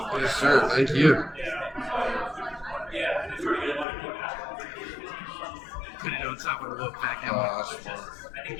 Yes, sir. Thank you. on top of the Wolfpack Oh, helmet. that's smart.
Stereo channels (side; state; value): right; drops out; at 3.9 s